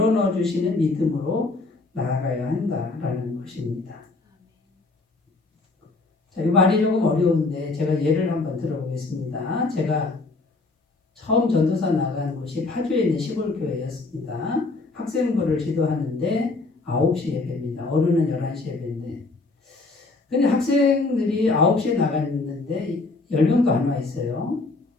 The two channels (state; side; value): quieter; right; 3.5 dB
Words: 주시는 믿음으로 나아가야 한다라는 것입니다. 자, 이 말이 조금 어려운데 제가 예를 한번 들어보겠습니다. 제가 처음 전도사 나간 곳이 파주에 있는 시골교회였습니다. 학생부를 지도하는데 9시 예배입니다. 어른은 11시 예배인데. 근데 학생들이 9시에 나갔는데 10명도 안 와 있어요.